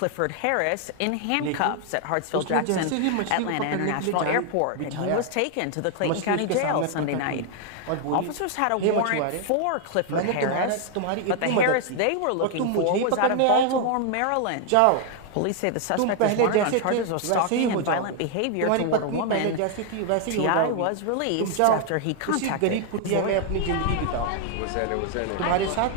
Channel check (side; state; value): both; different; correlation 0.00